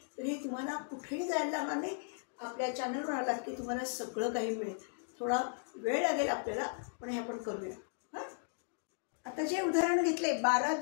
तरी तुम्हाला कुठेही जायला लागणार नाही. आपल्या चॅनलवर आलात की तुम्हाला सगळं काही मिळेल. थोडा वेळ लागेल आपल्याला, पण हे आपण करूया. हां, आता जे उदाहरण घेतले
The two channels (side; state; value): right; silent; digital silence